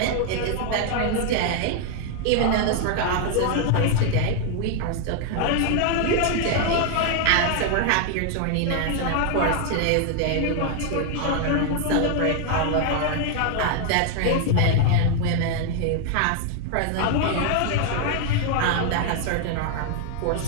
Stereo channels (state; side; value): different; both; correlation 0.00